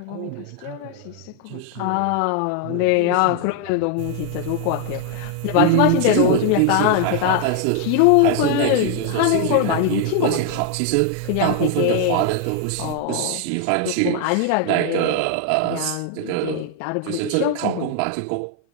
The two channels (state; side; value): different; both; correlation 0.00